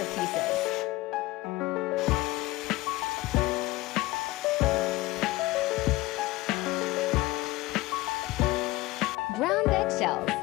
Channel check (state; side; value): quieter; right; 19.3 dB